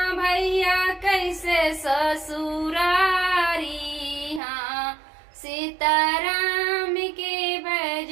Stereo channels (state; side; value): drops out; left; at 4.4 s